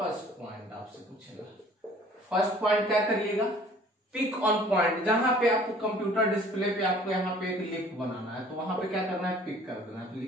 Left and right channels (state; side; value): normal; both; correlation 0.52